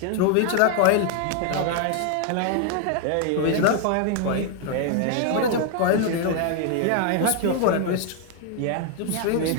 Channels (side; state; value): both; different; correlation 0.00